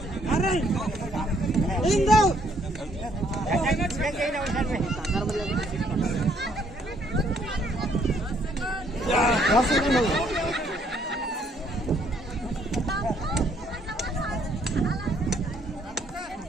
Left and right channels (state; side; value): normal; both; correlation 0.67